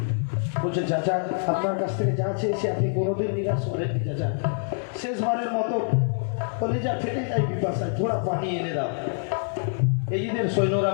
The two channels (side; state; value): right; silent; digital silence